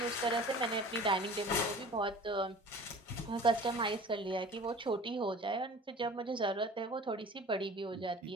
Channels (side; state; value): both; normal; correlation 0.42